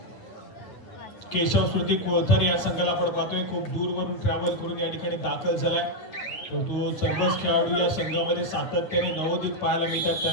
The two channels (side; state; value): right; late; 9.6 ms